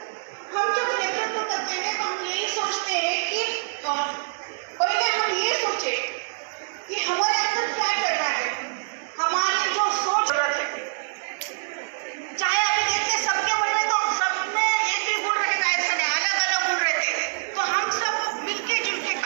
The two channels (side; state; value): left; silent; digital silence